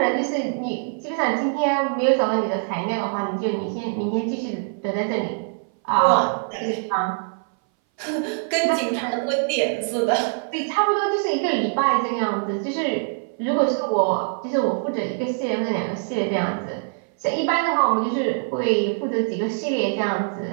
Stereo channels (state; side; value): silent; left; 59 dB below the other